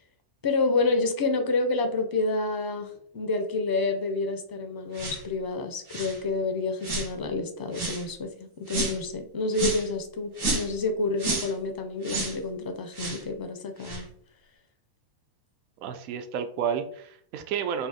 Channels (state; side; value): late; left; 1.2 ms